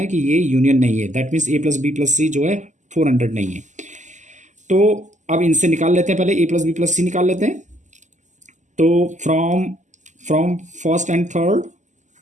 कि ये यूनियन नहीं है, दैट मीन्स A+B+C जो है 400 नहीं है। तो अब इनसे निकाल लेते हैं, पहले A+B+C निकाल लेते हैं। तो फ्रॉम फर्स्ट एंड थर्ड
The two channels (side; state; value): left; late; 0.35 ms